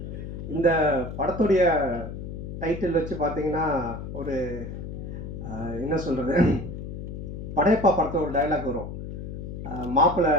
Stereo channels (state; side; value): noise; left; hum, 8 dB below the sound